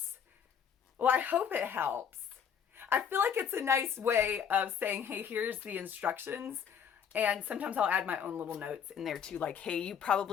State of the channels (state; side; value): quieter; right; 7.7 dB